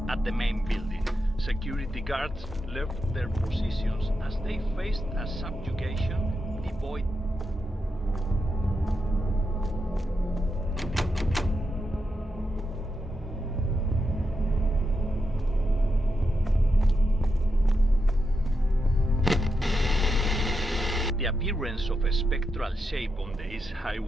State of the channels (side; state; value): both; normal; correlation 0.86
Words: at the main building. Security guards left their positions as they faced a subjugation devoid. The appearance of a spectral shape on the East